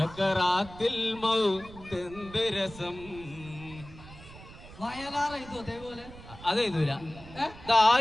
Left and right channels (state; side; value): noise; right; rumble, 18 dB below the sound